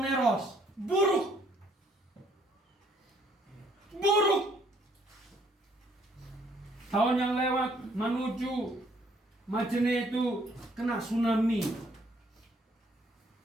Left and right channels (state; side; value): normal; both; correlation 0.65